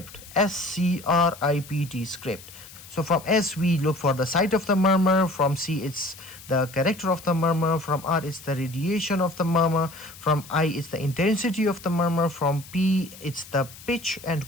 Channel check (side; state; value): left; noise; hiss, 18 dB below the sound